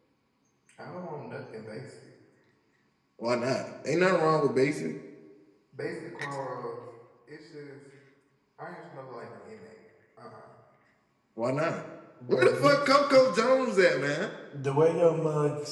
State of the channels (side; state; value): both; identical; correlation 1.00